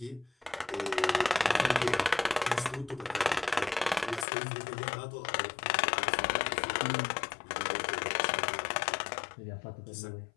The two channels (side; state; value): right; drops out; at 4.2 s